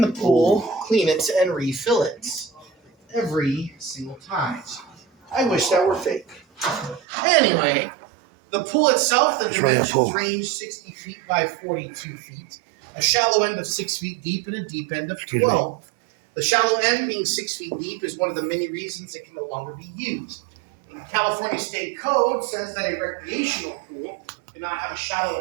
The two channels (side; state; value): left; drops out; at 7.0 s